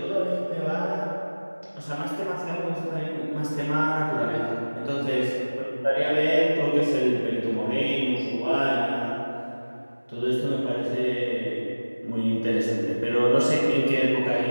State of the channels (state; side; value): inverted; both; correlation -1.00